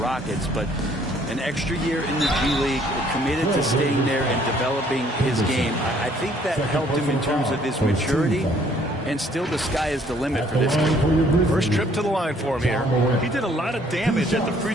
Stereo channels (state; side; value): normal; both; correlation 0.62